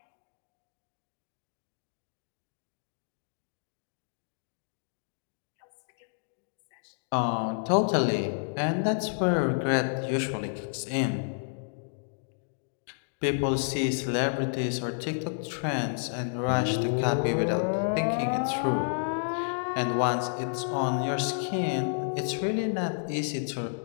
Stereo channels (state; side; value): silent; right; digital silence